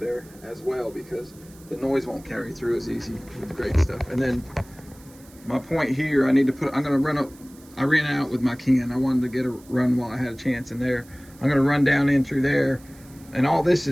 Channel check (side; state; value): right; noise; hiss, 25 dB below the sound